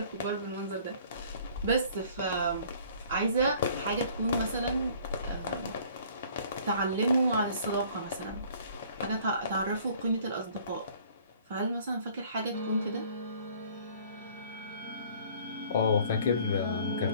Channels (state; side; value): inverted; both; correlation -0.54